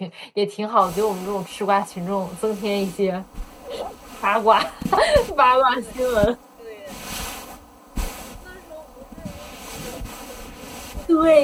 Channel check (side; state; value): both; identical; correlation 1.00